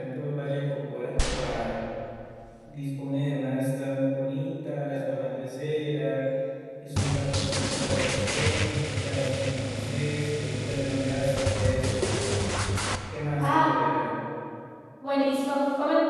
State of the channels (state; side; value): identical; both; correlation 1.00